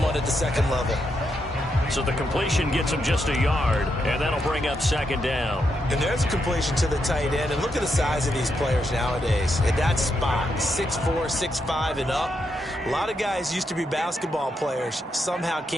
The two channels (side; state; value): both; normal; correlation 0.82